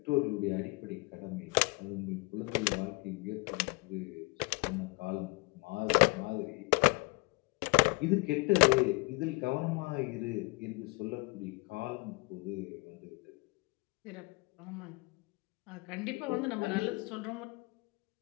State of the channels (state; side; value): quieter; right; 27.3 dB